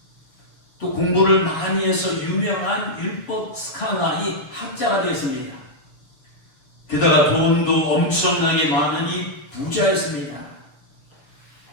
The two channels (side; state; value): right; late; 7.2 ms